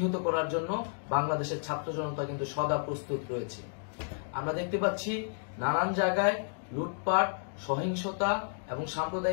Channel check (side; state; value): right; silent; digital silence